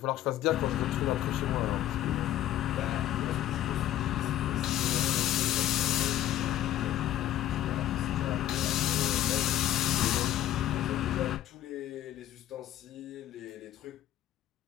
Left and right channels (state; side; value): quieter; right; 12.7 dB